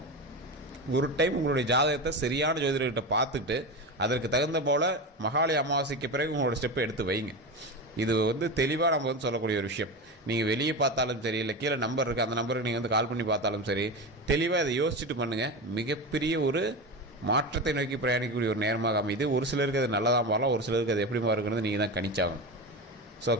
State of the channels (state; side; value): normal; both; correlation 0.22